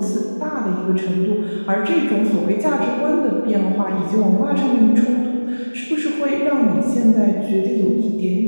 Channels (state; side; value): inverted; both; correlation -1.00